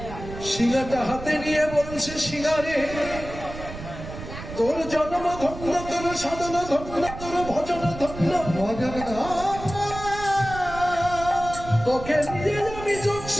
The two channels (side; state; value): right; noise; rumble, 11 dB below the sound